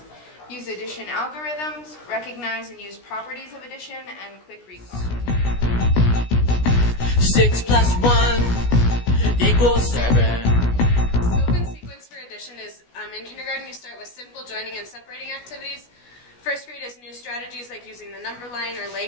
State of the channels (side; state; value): right; late; 16 ms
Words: use addition algorithms, recognize and use properties of addition, and quick recall. 6 plus 1 equals 7. Scope and sequence for addition is, in kindergarten you start with simple joining and separating activities. First grade is new strategies like using the number line or